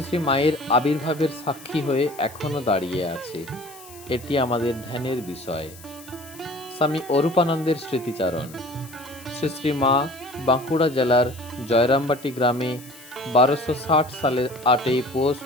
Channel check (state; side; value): noise; left; hiss, 20 dB below the sound